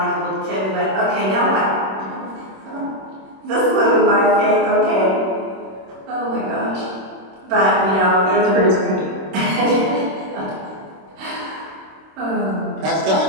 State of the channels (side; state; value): left; late; 26 ms